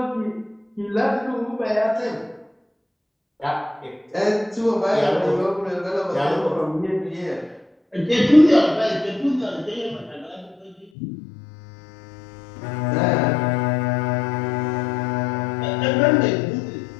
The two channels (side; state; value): right; drops out; at 10.9 s